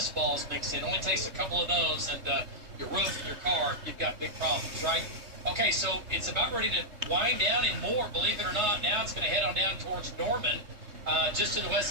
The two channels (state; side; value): late; left; 3.2 ms